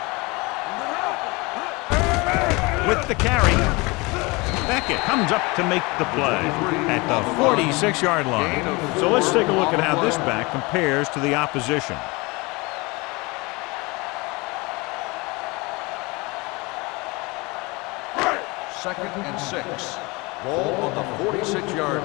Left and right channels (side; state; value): right; quieter; 25.4 dB